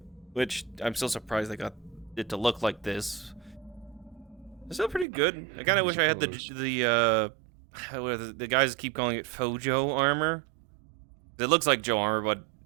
which I'm still surprised they got it to look like this, it's still pretty good. I kind of wish I had the guys keep calling it Fojo armor. It looks like Joe armor, but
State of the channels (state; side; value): drops out; left; at 5.1 s